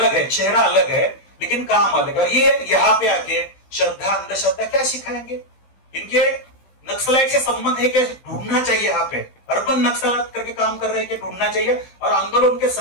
है, चेहरा अलग है, लेकिन काम अलग है। और ये यहाँ पे आके श्रद्धा अंधश्रद्धा क्या सिखाएंगे? इनके नक्सलाइट से संबंध है क्या? ढूंढना चाहिए। यहाँ पे अर्बन नक्सलाइट करके काम कर रहे हैं कि ढूंढना चाहिए। और आंदोलन के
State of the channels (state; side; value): late; right; 16 ms